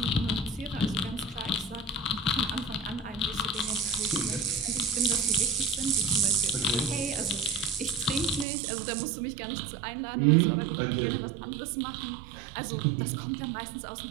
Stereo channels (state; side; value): drops out; left; at 8.5 s